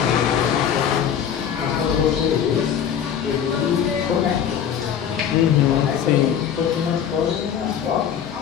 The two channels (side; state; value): right; quieter; 8.7 dB